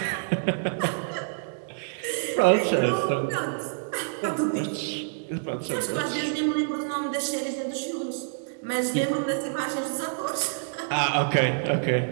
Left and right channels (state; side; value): silent; left; digital silence